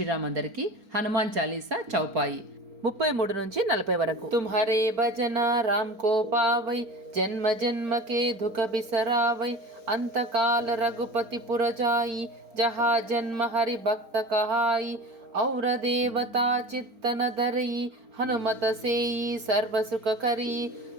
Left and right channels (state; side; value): late; left; 4.4 ms